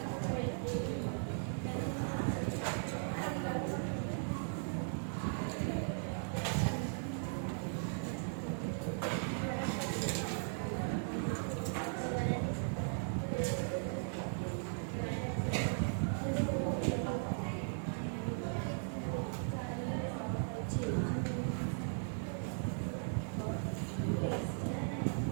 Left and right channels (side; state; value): left; silent; digital silence